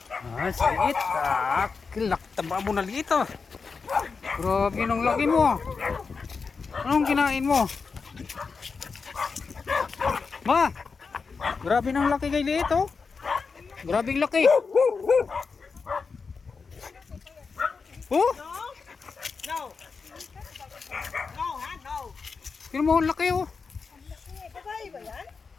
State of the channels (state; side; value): quieter; right; 5.0 dB